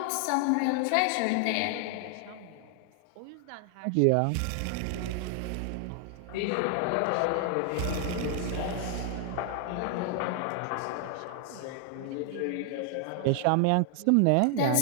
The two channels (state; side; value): different; both; correlation 0.00